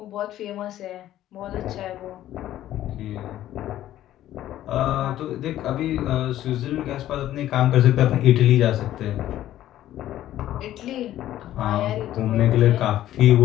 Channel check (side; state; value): right; quieter; 13.1 dB